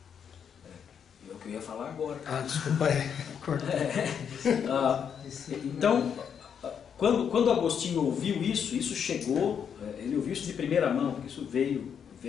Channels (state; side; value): quieter; right; 7.7 dB